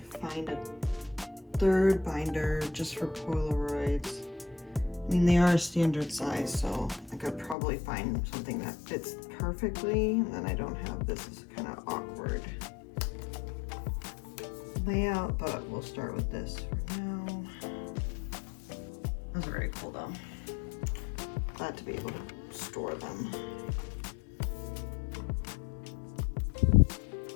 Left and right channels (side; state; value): right; drops out; at 7.6 s